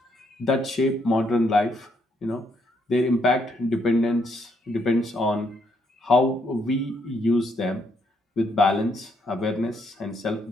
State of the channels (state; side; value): normal; both; correlation 0.73